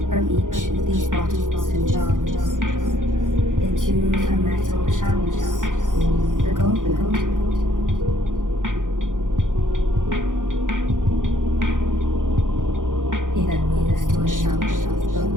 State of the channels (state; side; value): late; left; 0.88 ms